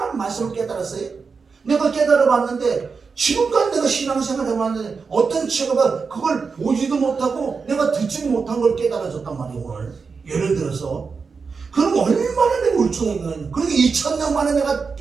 말씀을 깨달았어요. 내가 깨달아봤는데 지금까지 내가 신앙생활 해봤는데 어떤 친구가 그걸 보지도 못하고 내가 듣지도 못한 걸 깨달아줬단 말이에요. 오늘 예를 들어서 그럼 얼마나 내가 울퉁했냐. 그러니까 2000년 만에 내가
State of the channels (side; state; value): left; quieter; 5.1 dB